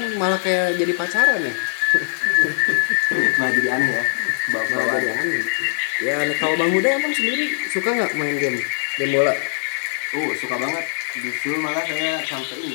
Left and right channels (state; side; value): silent; right; digital silence